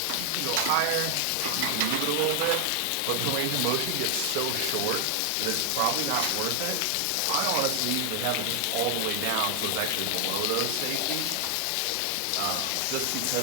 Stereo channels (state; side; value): different; both; correlation 0.00